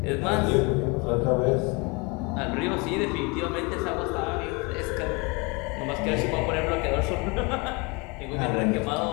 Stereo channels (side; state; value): right; quieter; 28.6 dB